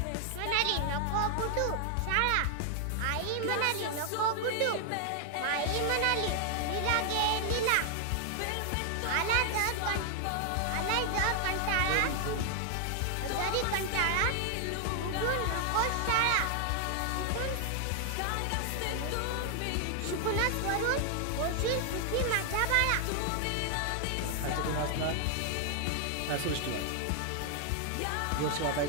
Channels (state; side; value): different; both; correlation 0.00